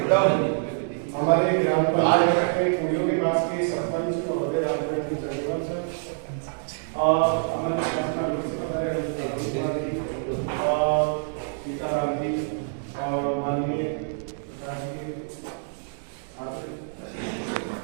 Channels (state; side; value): silent; left; digital silence